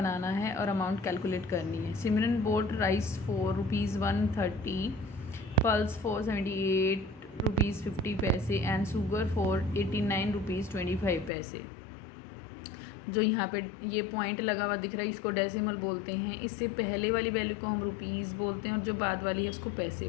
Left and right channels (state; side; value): drops out; right; at 11.3 s